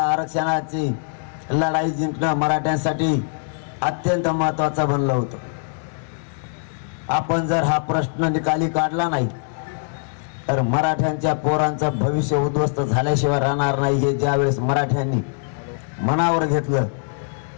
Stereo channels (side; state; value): right; silent; digital silence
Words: आरक्षणाची लढाई जिंकणं मराठ्यांसाठी अत्यंत महत्वाचं बनलं होतं. आपण जर हा प्रश्न निकाली काढला नाही तर मराठ्यांच्या पोरांचं भविष्य उद्ध्वस्त झाल्याशिवाय राहणार नाही. हे ज्यावेळेस मराठ्यांनी मनावर घेतलं